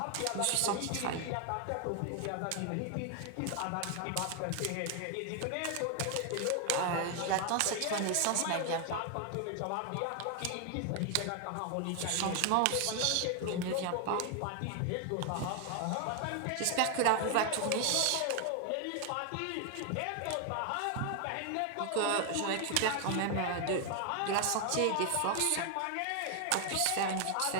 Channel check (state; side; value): different; both; correlation 0.01